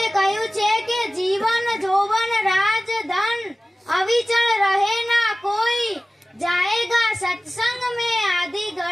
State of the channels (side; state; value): both; normal; correlation 0.97